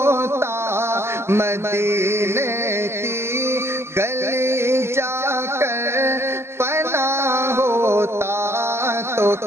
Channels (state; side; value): late; left; 0.12 ms